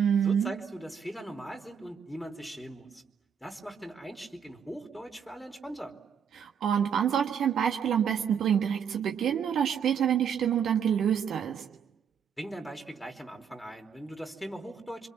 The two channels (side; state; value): left; quieter; 7.5 dB